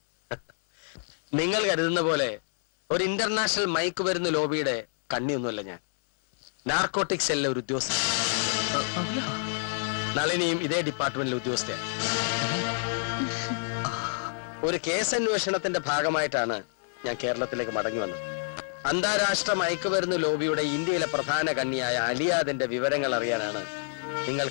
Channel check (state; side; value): silent; right; digital silence